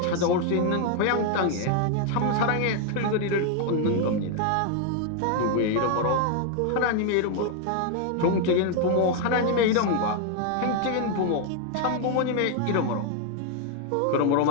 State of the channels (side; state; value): both; different; correlation 0.00